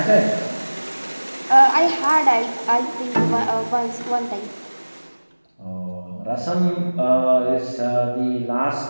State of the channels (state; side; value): inverted; both; correlation -1.00